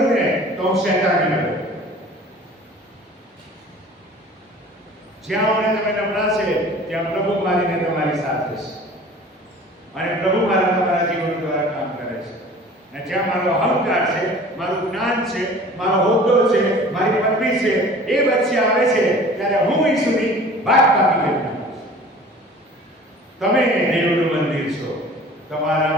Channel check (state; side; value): normal; both; correlation 0.45